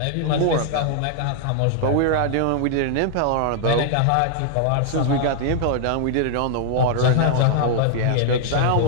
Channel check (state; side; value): different; both; correlation 0.00